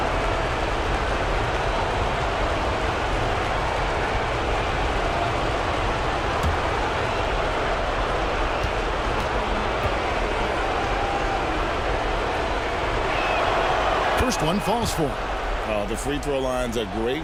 First one falls for him. The free throw line's a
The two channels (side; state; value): both; identical; correlation 1.00